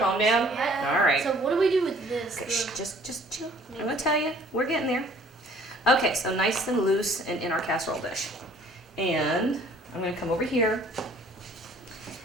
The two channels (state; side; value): normal; both; correlation 0.55